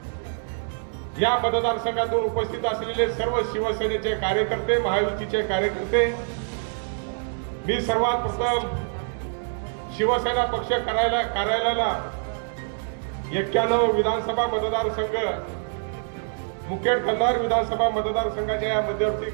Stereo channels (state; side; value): silent; left; 62 dB below the other